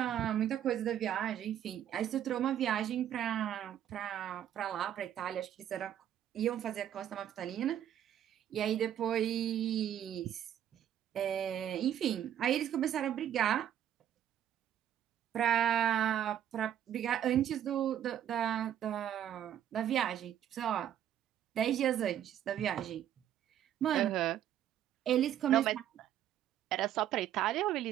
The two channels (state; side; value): quieter; left; 10.6 dB